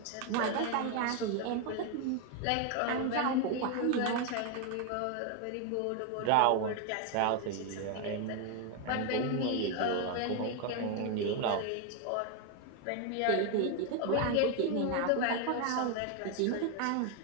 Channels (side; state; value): both; different; correlation 0.01